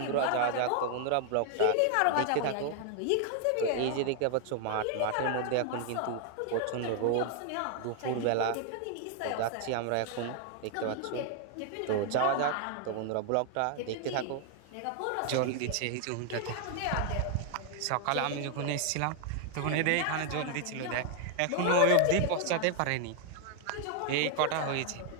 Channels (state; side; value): different; both; correlation 0.00